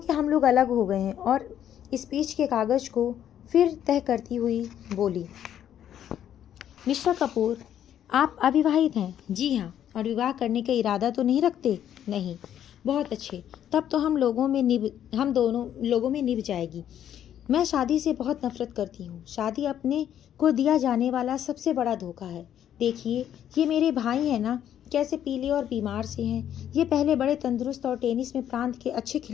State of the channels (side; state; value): right; quieter; 10.3 dB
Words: हम लोग अलग हो गए हैं। और स्पीच के कागज़ को फिर तह करती हुई बोली। मिस्टर कपूर, आप अविवाहित हैं? जी हाँ। और विवाह करने का इरादा तो नहीं रखते? नहीं। बहुत अच्छे, तब तो हम दोनों लोगों में निभ जाएगी। मैं शादी से बहुत नफरत करती हूँ। शादी अपने को दिया जाने वाला सबसे बड़ा धोखा है। देखिए, ये मेरे भाई हैं ना, कैसे पीले और बीमार से हैं। ये पहले बड़े तंदुरुस्त और टेनिस में प्रांत के अच्छे